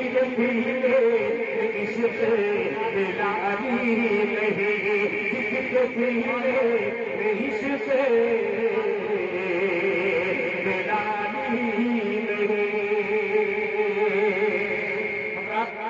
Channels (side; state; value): both; identical; correlation 1.00